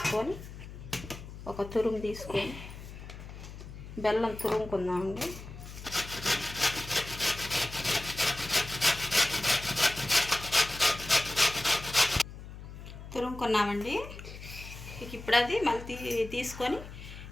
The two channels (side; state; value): left; noise; hum, 13 dB below the sound